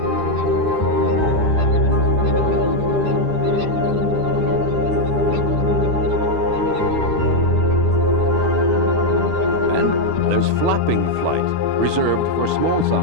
Flapping flight, reserved for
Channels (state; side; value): late; left; 12 ms